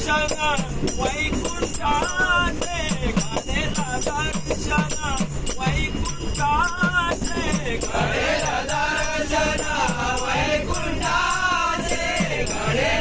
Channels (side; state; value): both; identical; correlation 1.00